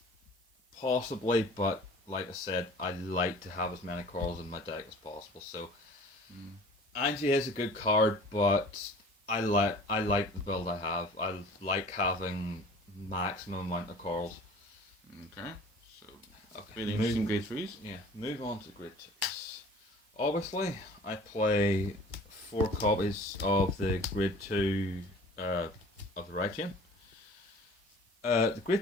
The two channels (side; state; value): both; normal; correlation 0.46